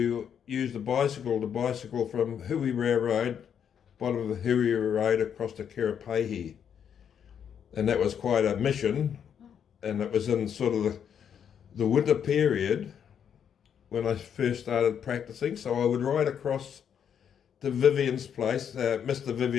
use the bicycle from Hui Road, bottom of the Hui Road across to Kerepehi. And that was quite a mission, and it was in sort of the winter period when I first started practicing. So I would ride across to Vivian's place, Mr.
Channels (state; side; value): quieter; right; 8.2 dB